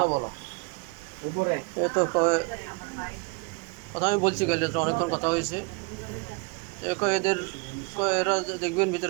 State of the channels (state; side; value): quieter; left; 31.4 dB